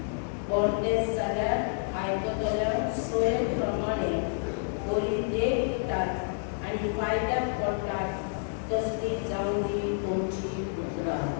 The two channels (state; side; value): silent; right; digital silence